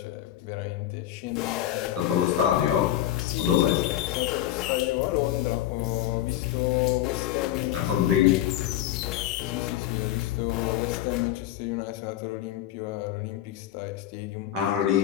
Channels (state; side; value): quieter; right; 13.0 dB